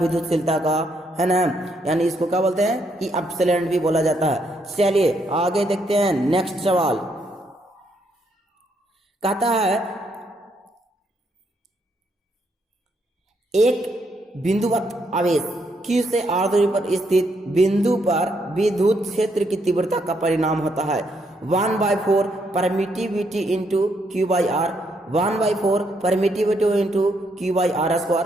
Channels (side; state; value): both; normal; correlation 0.75